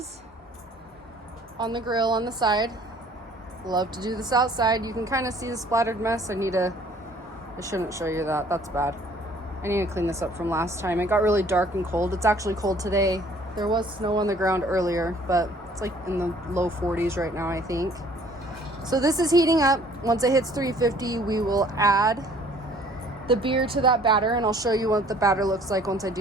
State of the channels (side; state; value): both; normal; correlation 0.56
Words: on the grill on the side. Love to do this outside. You can kind of see the splattered mess. I shouldn't show you that. That's bad. I need to clean this up from last time. It got really dark and cold. It's actually cold today. There was snow on the ground earlier, but it's like in the low 40s right now, I think. So this is heating up. Once it hits 350, we will add the beer to that batter, and I'll show you what the batter looks like once I